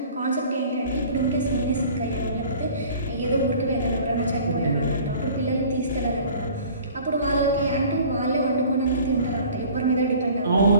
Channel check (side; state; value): both; inverted; correlation -0.48